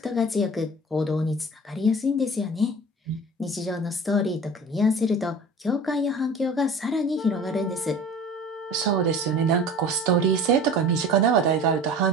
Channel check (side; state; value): both; normal; correlation 0.40